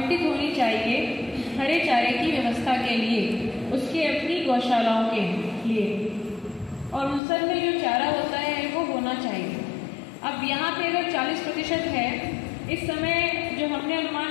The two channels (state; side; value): drops out; right; at 7.2 s